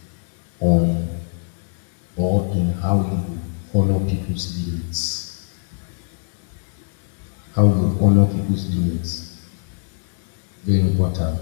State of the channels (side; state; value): right; silent; 64 dB below the other